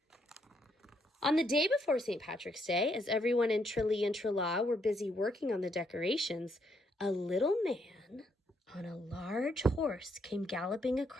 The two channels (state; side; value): normal; both; correlation 0.74